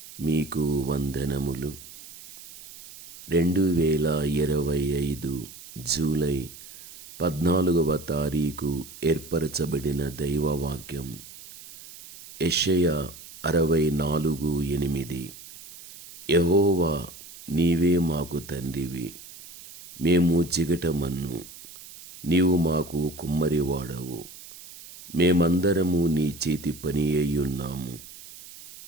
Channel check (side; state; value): right; noise; hiss, 17 dB below the sound